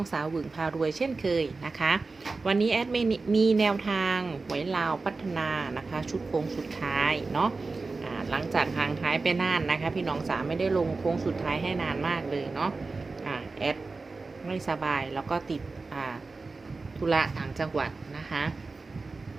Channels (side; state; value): left; quieter; 3.9 dB